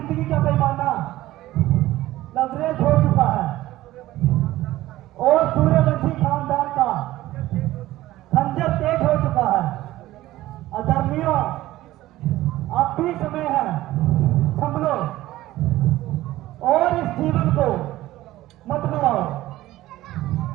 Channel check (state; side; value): quieter; left; 16.0 dB